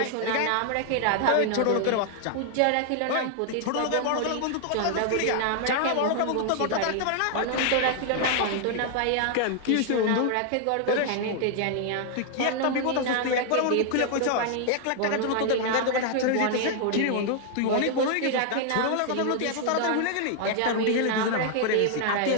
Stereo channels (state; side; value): different; both; correlation 0.00